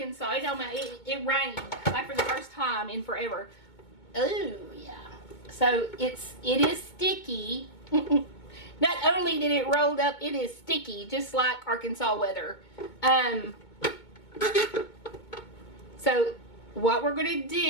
it rained like for the first time in forever. Oh, yeah. So it is sticky. Not only did it roll up, it is sticky, just like Arkansas weather. So what we're going to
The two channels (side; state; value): right; late; 2.2 ms